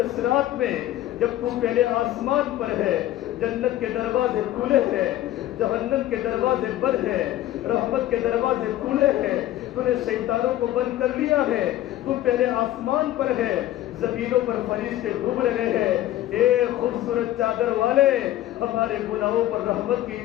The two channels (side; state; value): right; quieter; 13.9 dB